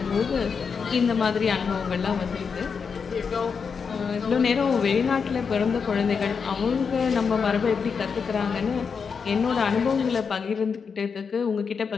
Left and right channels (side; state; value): right; quieter; 5.8 dB